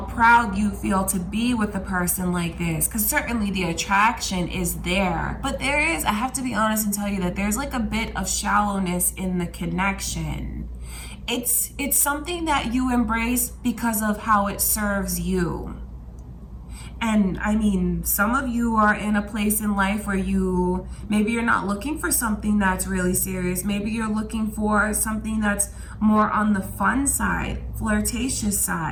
you feel to be with a person like this, because certainly the attraction is there, but there is, I have to be honest and tell you that there's like a bit of shallowness in the connection. It's something that you embrace because of how it serves you. And I mean, some of you are in a place in life where maybe you're not looking for something that's really serious. Maybe you're looking for something that's more on the fun side, flirtatious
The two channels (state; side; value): identical; both; correlation 1.00